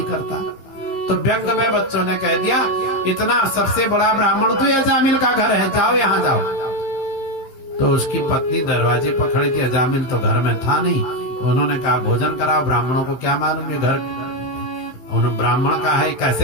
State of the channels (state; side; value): late; right; 15 ms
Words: करता। तो व्यंग में बच्चों ने कह दिया, इतना सबसे बड़ा ब्राह्मण तो ये अजामिल का घर है, जाओ यहाँ जाओ। तो उसकी पत्नी दरवाजे पर खड़ी थी, अजामिल तो घर में था नहीं। उन्होंने कहा भोजन कराओ, ब्राह्मणों को क्या मालूम ये घर उन्होंने ब्राह्मण का है,